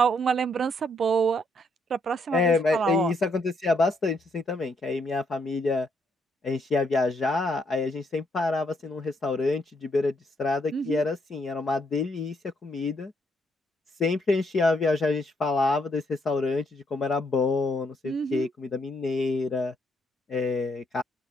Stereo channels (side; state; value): both; normal; correlation 0.74